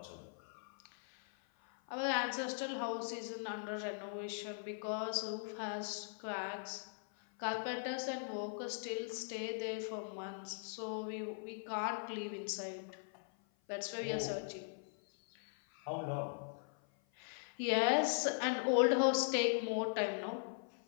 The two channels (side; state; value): right; silent; 51 dB below the other